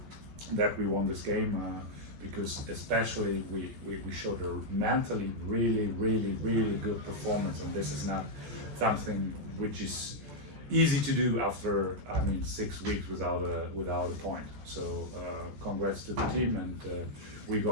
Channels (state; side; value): late; left; 14 ms